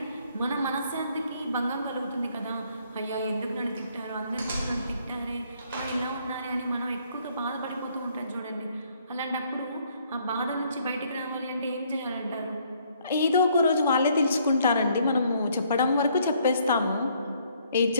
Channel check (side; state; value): both; inverted; correlation -0.66